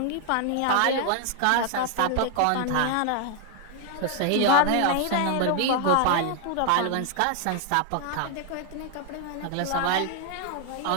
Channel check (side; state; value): both; different; correlation 0.00